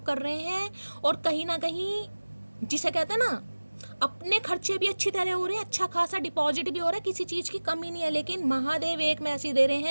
कर रहे हैं, और कहीं ना कहीं जिसे कहते हैं ना अपने खर्चे भी अच्छी तरह हो रहे हैं, अच्छा खासा डिपॉजिट भी हो रहा है, किसी चीज़ की कमी नहीं है। लेकिन महादेव एक मैसेज दे रहे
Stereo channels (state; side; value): inverted; both; correlation -1.00